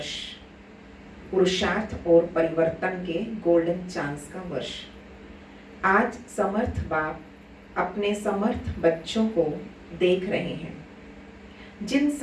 पुरुषार्थ और परिवर्तन के गोल्डन चांस का वर्ष। आज समर्थ बाप अपने समर्थ बच्चों को देख रहे हैं, जिन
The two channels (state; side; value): identical; both; correlation 1.00